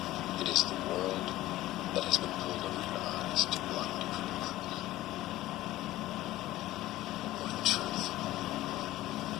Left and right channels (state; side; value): quieter; right; 16.0 dB